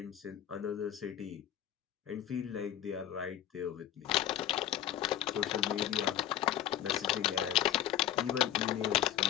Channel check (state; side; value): quieter; right; 11.5 dB